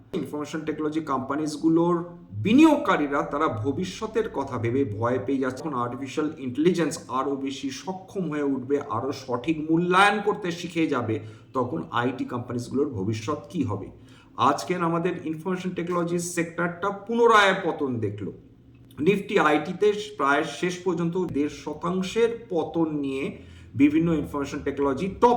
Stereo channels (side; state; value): both; identical; correlation 1.00